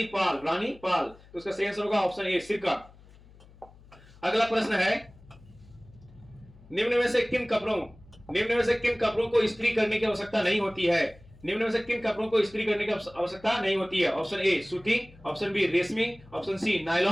पाल। तो इसका सही आंसर होगा ऑप्शन ए सिरका। अगला प्रश्न है, निम्न में से किन कपड़ों को इस्त्री करने की आवश्यकता नहीं होती है? निम्न में से किन कपड़ों को इस्त्री करने की आवश्यकता नहीं होती है? ऑप्शन ए सूती, ऑप्शन बी रेशमी, option C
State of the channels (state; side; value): noise; left; hum, 24 dB below the sound